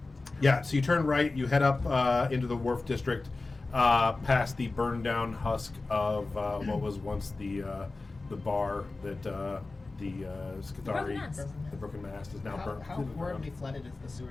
Yeah, so you turn right, you head up into the Wharf District, past the burned down husk of what was once the bar that the Skithari, Broken Mast. the Broken Mast is now How, burnt. how horribly flooded is the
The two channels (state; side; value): quieter; right; 3.4 dB